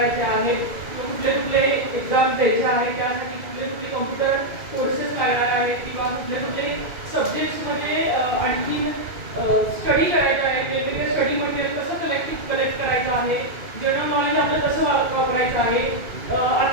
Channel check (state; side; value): late; left; 2.5 ms